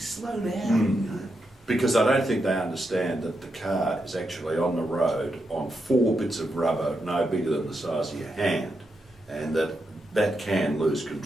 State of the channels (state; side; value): normal; both; correlation 0.84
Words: down. You know? Because I don't think they understand that the car is actually on the road on 4 bits of rubber no bigger than the size of your hand, and that can lose